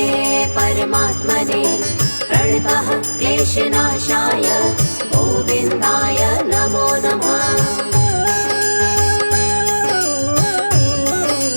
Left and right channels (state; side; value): inverted; both; correlation -1.00